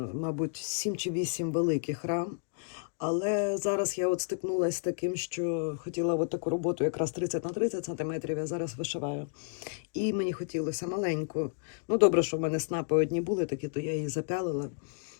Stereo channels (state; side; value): silent; right; digital silence